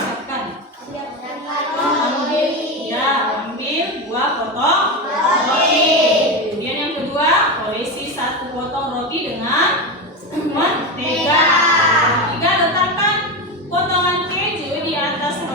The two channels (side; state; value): both; normal; correlation 0.17